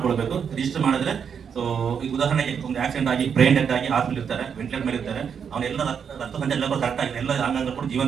ರಿಜಿಸ್ಟರ್ ಮಾಡಿದ್ರೆ ಸೊ ಈಗ ಉದಾಹರಣೆಗೆ ಒಂದು ಆಕ್ಸಿಡೆಂಟ್ ಆಗಿ ಬ್ರೈನ್ ಡೆತ್ ಆಗಿ ಹಾಸ್ಪಿಟಲ್ ಇರ್ತಾರೆ, ವೆಂಟಿಲೇಟರ್ ಮೇಲೆ ಇರ್ತಾರೆ, ಅವನೆಲ್ಲ ರಕ್ತ ಸಂಚಾರ ಎಲ್ಲ ಕರೆಕ್ಟ್ ಆಗಿದೆ, ಎಲ್ಲ ಅಂಗಾಂಗ ಕೂಡ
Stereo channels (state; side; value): quieter; left; 7.1 dB